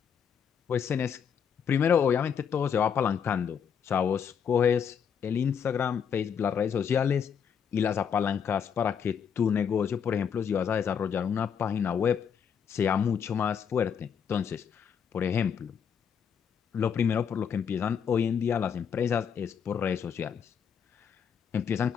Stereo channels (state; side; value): quieter; right; 7.4 dB